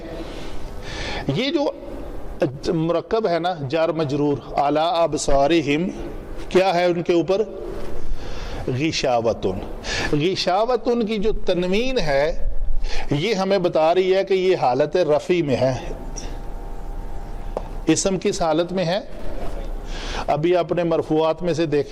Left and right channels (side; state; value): both; identical; correlation 1.00